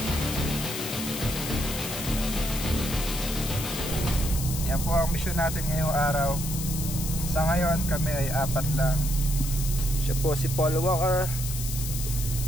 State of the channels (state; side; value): noise; left; hiss, 6 dB below the sound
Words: Yan po ang mission natin ngayong araw. Sa ngayon kami ay 4 lang. Siya po si Paul Walker,